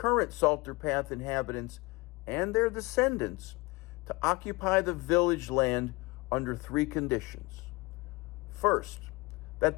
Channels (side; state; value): right; quieter; 24.5 dB